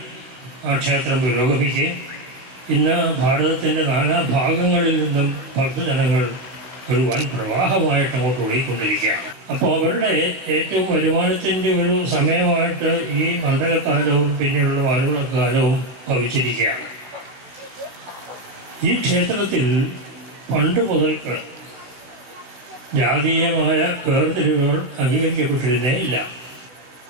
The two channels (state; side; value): late; left; 16 ms